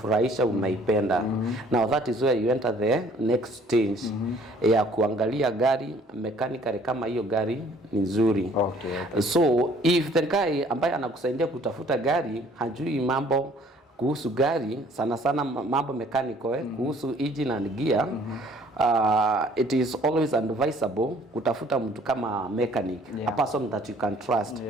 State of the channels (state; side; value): normal; both; correlation 0.58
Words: umeipenda. Now that is where you enter the next stage ya kuangalia gari mechanically kama hiyo gari ni nzuri. So if the guy ambaye anakusaidia kutafuta gari hajui mambo kuhusu gari sana sana mambo mechanical kuhusu engine and gear, it is always advisable kutafuta mtu kama mechanic, a person that you can trust,